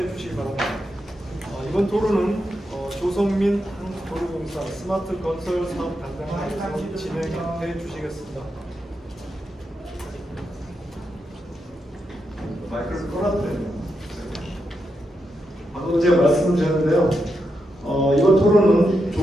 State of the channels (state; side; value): normal; both; correlation 0.85